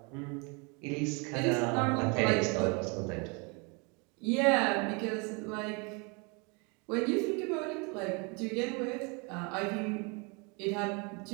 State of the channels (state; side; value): quieter; left; 31.7 dB